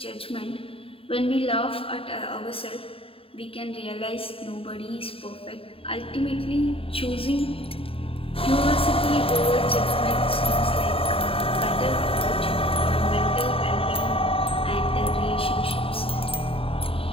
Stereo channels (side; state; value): right; late; 0.27 ms